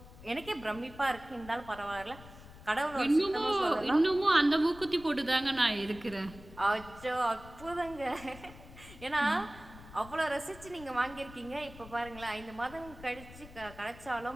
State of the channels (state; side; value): noise; left; rumble, 18 dB below the sound